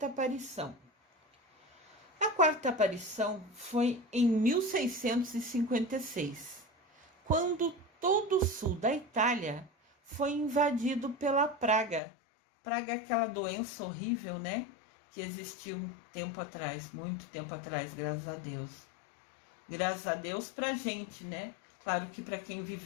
aparição. A quarta aparição foi em 1656, quando todo o sul da Itália foi invadido pela praga. Praga é aquela doença horrível, né? Que existiu um tempo atrás, muito tempo atrás, graças a Deus. Graças a Deus pra gente, né? Claro que para quem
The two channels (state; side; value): drops out; right; at 12.0 s